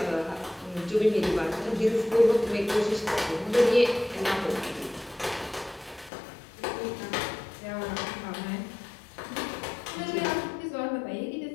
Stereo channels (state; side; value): drops out; right; at 6.1 s